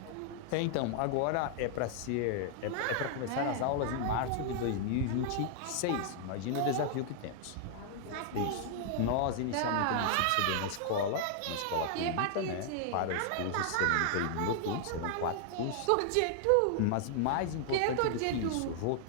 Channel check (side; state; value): both; different; correlation 0.00